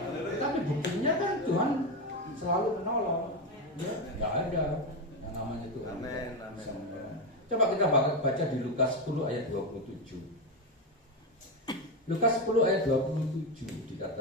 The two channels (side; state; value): both; normal; correlation 0.12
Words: Tapi buktinya kan Tuhan selalu menolong, ya, nggak ada yang namanya Tuhan bisa menolong. Coba kita baca di Lukas 10 ayat 27. Lukas 10 ayat 27